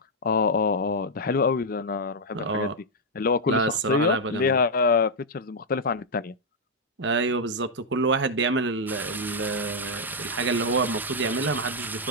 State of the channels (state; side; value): normal; both; correlation -0.03